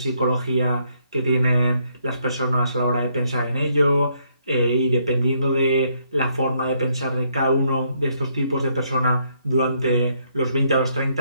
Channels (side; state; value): both; inverted; correlation -0.72